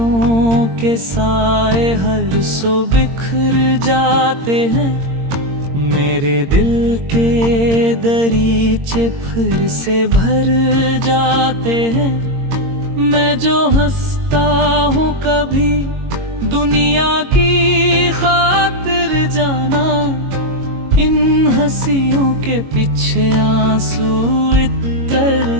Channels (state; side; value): late; left; 22 ms